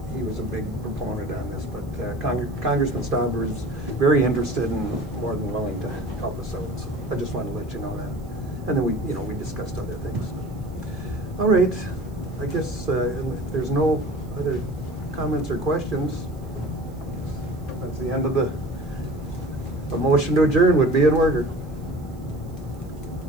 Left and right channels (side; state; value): right; noise; hiss, 30 dB below the sound